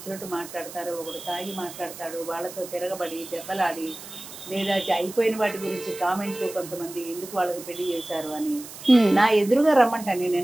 మాట్లాడతారు. ఒకడు తాగి మాట్లాడతాడు, వాళ్ళతో తిరగబడి దెబ్బలాడి, లేదా అయిపోయిన వాటి గురించి కామెంట్లు, కొంతమంది ఎందుకు వాళ్ళకి పెళ్లి చేశారు అని నా ఎదురుగా రమ్మంటాను. నేను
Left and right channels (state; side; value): noise; right; hiss, 14 dB below the sound